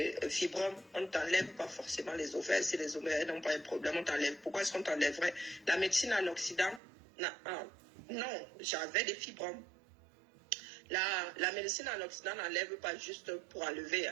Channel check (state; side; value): drops out; left; at 6.8 s